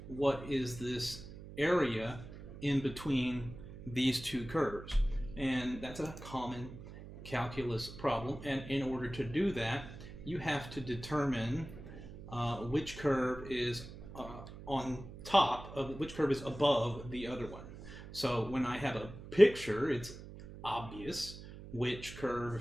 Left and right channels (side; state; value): right; noise; hum, 14 dB below the sound